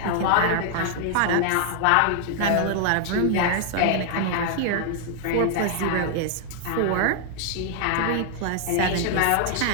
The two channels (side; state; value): both; different; correlation 0.00